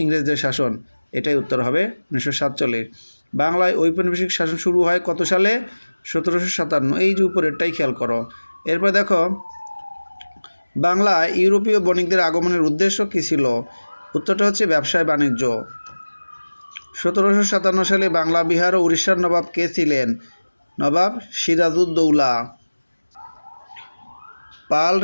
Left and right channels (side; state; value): both; inverted; correlation -1.00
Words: ইংরেজদের শাসন। এটাই উত্তর হবে 1947। বাংলায় ঔপনিবেশিক শাসন শুরু হয় কত সালে? 1757। এই যে উপরেরটাই খেয়াল করো। এরপর দেখো বাংলায় ইউরোপীয় বণিকদের আগমনের উদ্দেশ্য কী ছিল? উত্তরটা হচ্ছে ব্যবসায় বাণিজ্য। 1757 সালে বাংলা, বিহার ও উড়িষ্যার নবাব কে ছিলেন? নবাব সিরাজউদ্দৌলা। পাল